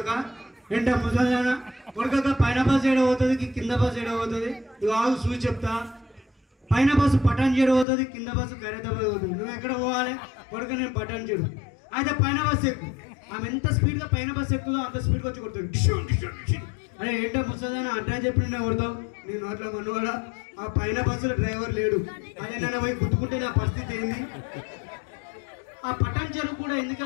ఏంటో ముసలానా కొడుక, పైన బస్సు ఏడబోతుంది కింద బస్సు ఏడబోతుంది, నువ్వు ఆగు చూసి చెప్తా. పైన బస్సు పటాన్ చెడు పోతుంది, కింద బస్సు ఖైరతాబాద్ పోతుంది. నువ్వు ఎక్కడ పోవాలి కొడుక? నేను పటాన్ చెడు. అయితే పైన బస్సు ఎక్కువ. ఆమె ఎంత స్పీడ్గా పైన బస్సు ఎక్కుతుందో అంత స్పీడ్గా వచ్చి కొడుతుంది. అరే ఏంటో ముసలానా అడ్డా చెప్పి నేను కొడతావు, నేను అట్లా మనవాడా? ఆ పైన బస్సులో డ్రైవర్ లేడు, అదేనా పోయి గుర్తుకుంటే నా పరిస్థితి ఏంది? ఆ పటాన్ చెరువు కూడా ఎందుకు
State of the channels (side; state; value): right; drops out; at 7.9 s